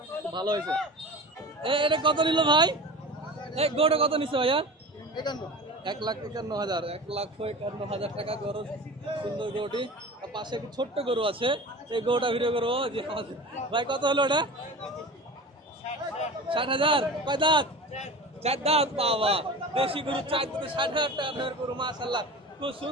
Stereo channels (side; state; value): both; normal; correlation 0.34